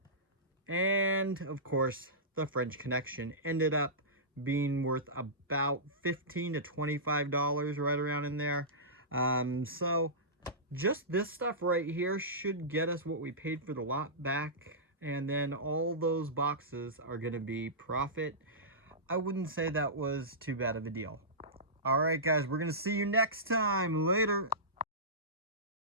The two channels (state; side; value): normal; both; correlation -0.18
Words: And of course, the French Connection ended up being worth about $15 to $25, right around in there. So just this stuff right here should get us what we paid for the lot back, and then all those boxes are going to be profit. I wouldn't say that was too bad of a deal. All right, guys, we're going to see you next time. Later.